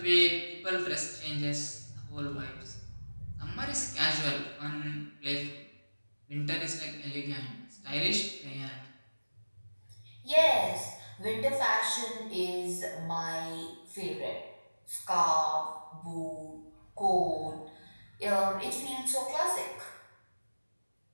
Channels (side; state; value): both; inverted; correlation -1.00